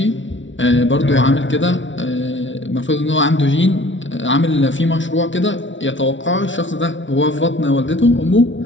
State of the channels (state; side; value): late; right; 0.55 ms